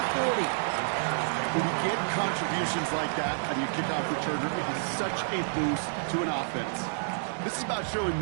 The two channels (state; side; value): silent; left; digital silence